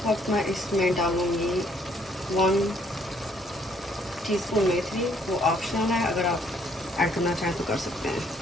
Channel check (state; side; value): normal; both; correlation 0.66